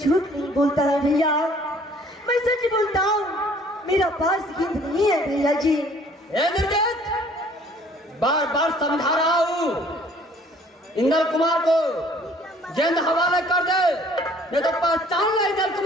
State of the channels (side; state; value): both; normal; correlation 0.56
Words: नहीं बोलता है भैया, मैं सच बोलता हूँ। मेरा पास गेंद नहीं है भैया जी। इंद्रजीत, बार बार समझा रहा हूँ, इंद्र कुमार को गेंद हवाले कर दे, नहीं तो पहचान ले इंद्र